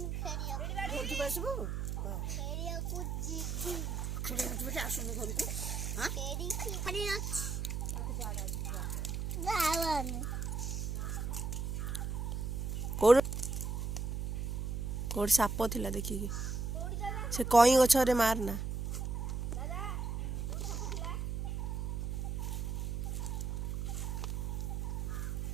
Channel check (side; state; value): right; noise; hum, 2 dB below the sound